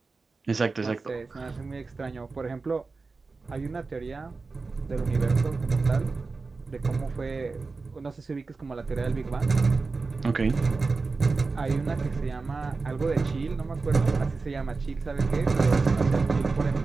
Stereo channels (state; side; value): quieter; left; 4.1 dB